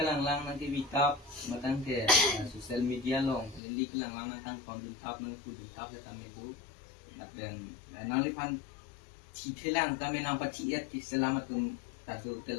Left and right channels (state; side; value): drops out; right; at 3.6 s